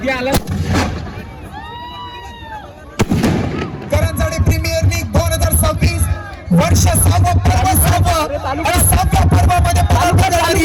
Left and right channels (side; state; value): both; identical; correlation 1.00